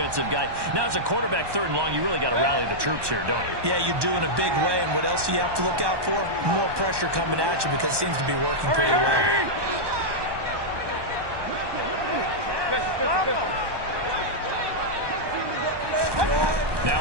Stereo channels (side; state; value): left; late; 1.2 ms